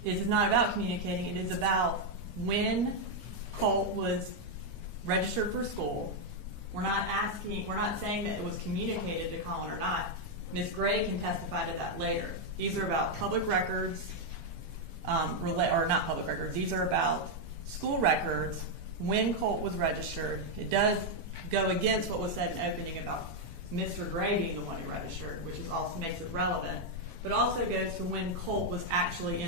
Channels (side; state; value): left; late; 12 ms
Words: is it's not about communicating, it is about when Colt was registered for school. We're not saying that it was communicated to Colin or not. Ms. Gray can testify to that later. These are about public records, or not public records, these are about school records when Colt was registered. It does go against what was said in opening about Mr. Gray being the one who registered, which is also makes it relevant, but also goes to when Colt was actually